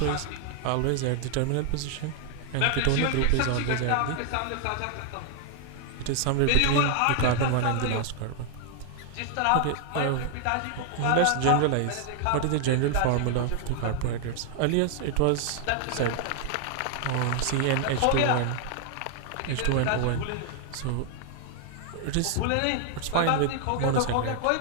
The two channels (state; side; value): different; both; correlation 0.00